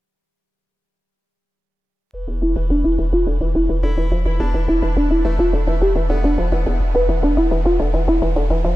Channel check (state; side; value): normal; both; correlation 0.95